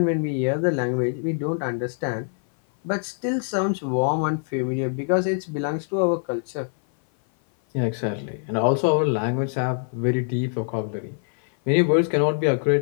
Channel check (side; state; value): right; silent; 56 dB below the other